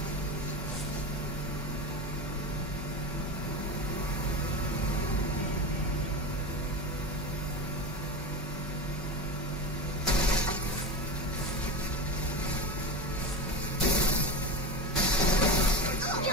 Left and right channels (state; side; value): normal; both; correlation 0.23